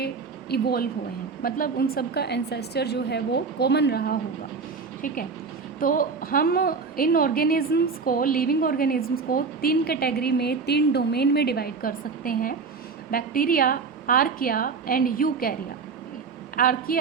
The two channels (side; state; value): left; quieter; 5.0 dB